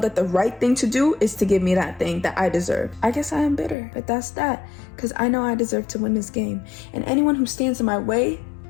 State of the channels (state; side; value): drops out; right; at 3.8 s